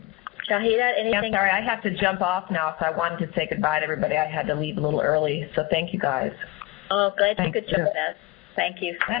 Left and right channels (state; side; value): quieter; right; 19.4 dB